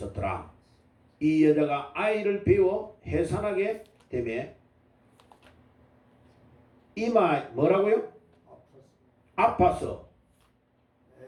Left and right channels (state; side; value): identical; both; correlation 1.00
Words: 이 여자가 아이를 배워 해산하게 되매 이마 뭐라고요? 아파서